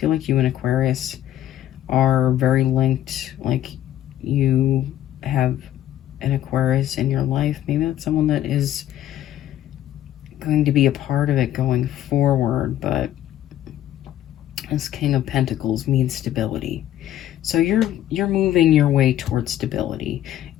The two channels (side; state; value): right; quieter; 12.3 dB